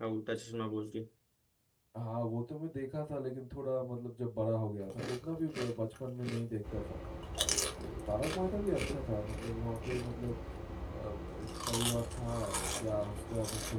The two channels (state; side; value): identical; both; correlation 1.00